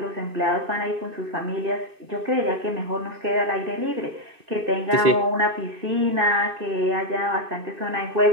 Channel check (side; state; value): left; late; 2.5 ms